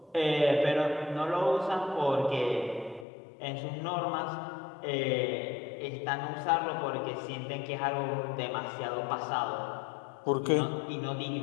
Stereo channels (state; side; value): drops out; right; at 3.1 s